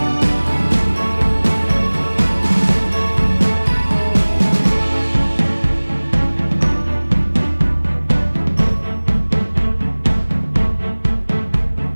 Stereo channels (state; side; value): inverted; both; correlation -1.00